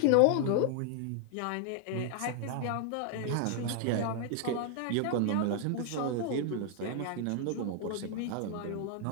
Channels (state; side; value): different; both; correlation 0.00